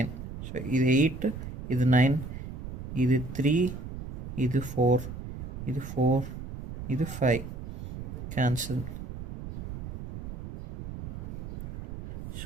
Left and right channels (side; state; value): right; noise; rumble, 8 dB below the sound